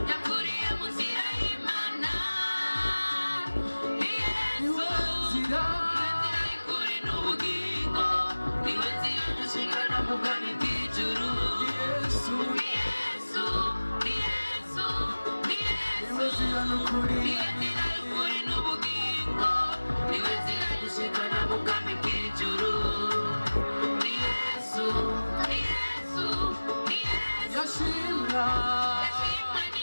yakuriye mu nzira y'Imana. Ni Yesu, nzira niwe nzira y'ukuri n'ubugingo, niwe nzira dushingana mu bwami bw'ijuru. Yesu Ni Yesu, ni Yesu, ni Yesu, nzira n'ukuri niwe nzira y'ukuri n'ubugingo, niwe nzira dushingana mu bwami bw'ijuru. Ni Yesu, ni Yesu, ni Yesu. yashimwa Yashimwe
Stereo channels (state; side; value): inverted; both; correlation -1.00